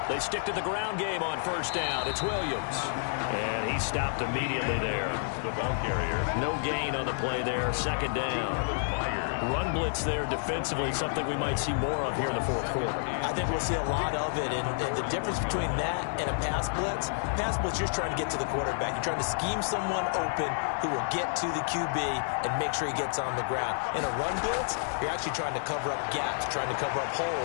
They stick to the ground game on first down. It's Williams. And he stopped immediately there. The ball carrier. No gain on the play there. Second down. Run blitz there defensively, something we might see more of here in the fourth quarter. I think we'll see a lot of it. And the difference between that and a pass blitz, you're just trying to get to the quarterback. You're trying to scheme someone open who will get to the QB and make sure he gets on the ground. In a run blitz, you're actually trying to cover up gaps, trying to cover up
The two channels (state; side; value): silent; right; 58 dB below the other